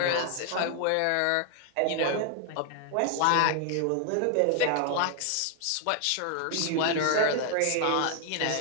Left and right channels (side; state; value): both; different; correlation 0.00